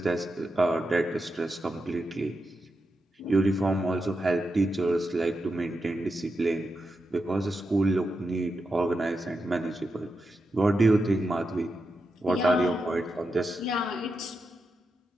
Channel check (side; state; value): both; normal; correlation 0.87